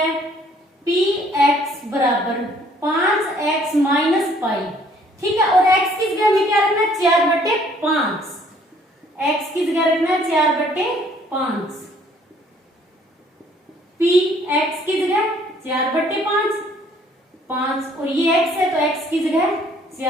Px बराबर 5x माइनस पाई। ठीक है, और x की जगह हमें क्या रखना है, 4/5। x की जगह रखना है 4/5। Px की जगह 4/5, 5 और ये x है तो x की जगह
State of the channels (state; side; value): normal; both; correlation 0.61